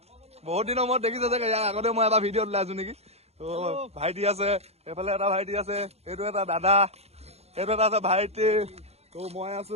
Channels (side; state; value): left; late; 0.30 ms